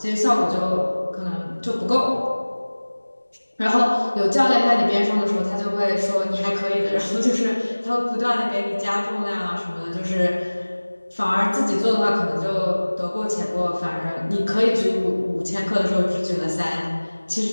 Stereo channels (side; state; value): both; inverted; correlation -1.00